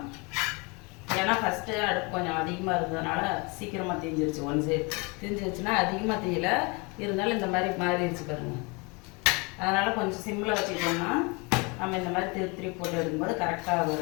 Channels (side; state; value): right; quieter; 29.1 dB